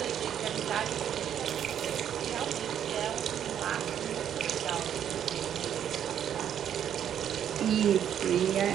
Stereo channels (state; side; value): quieter; left; 9.5 dB